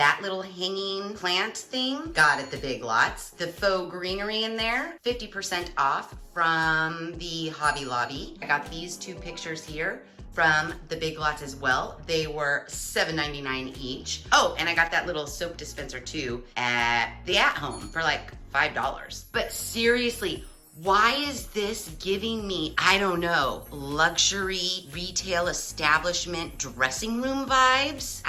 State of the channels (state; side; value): identical; both; correlation 1.00